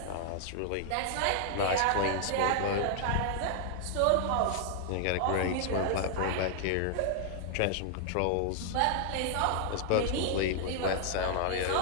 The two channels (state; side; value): different; both; correlation 0.00